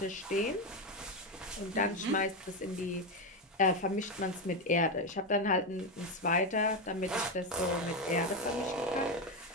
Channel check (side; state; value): both; normal; correlation 0.10